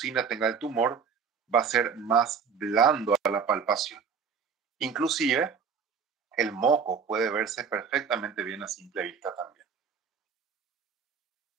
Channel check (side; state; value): left; quieter; 6.2 dB